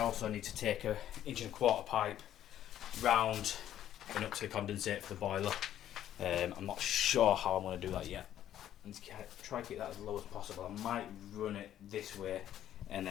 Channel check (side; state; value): right; quieter; 11.5 dB